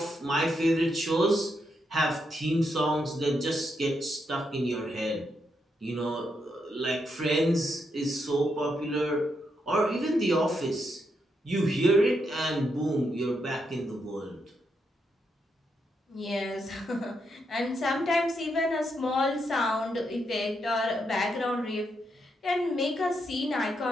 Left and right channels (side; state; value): both; normal; correlation 0.81